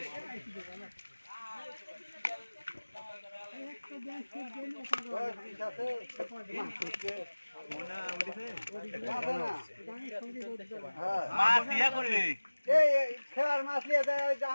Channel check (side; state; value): both; inverted; correlation -1.00